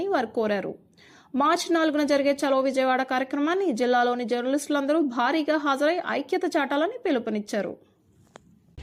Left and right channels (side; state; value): both; identical; correlation 1.00